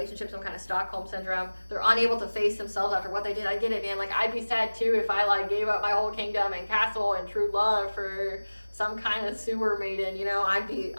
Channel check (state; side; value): inverted; both; correlation -1.00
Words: some kind of Stockholm syndrome. They're unable to face themselves after what they did. I get it, man. Like, I'd be sad too if I like gave up my whole kingdom and castle and true love for some kind of sewer maiden. You know, I'd be